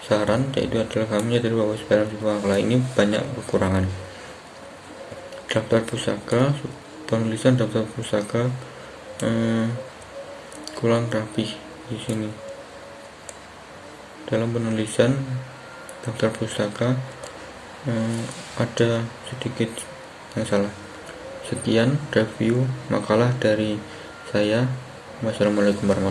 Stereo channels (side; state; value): both; identical; correlation 1.00